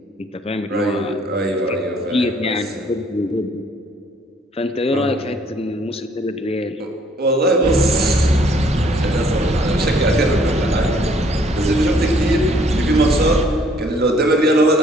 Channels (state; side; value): normal; both; correlation 0.62